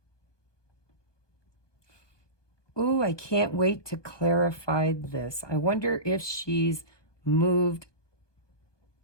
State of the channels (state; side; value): late; right; 1.2 ms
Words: Ooh, I can't wait to clarify this. I wonder if she's moved